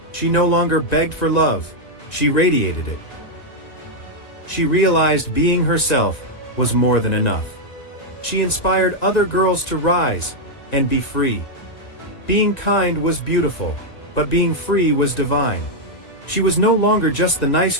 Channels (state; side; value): late; right; 1.8 ms